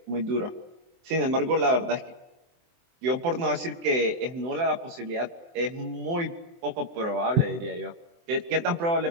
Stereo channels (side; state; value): left; late; 24 ms